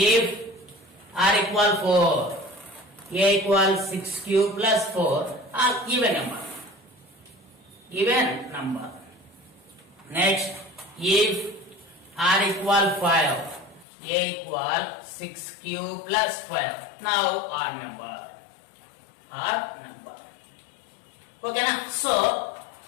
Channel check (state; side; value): drops out; right; at 13.9 s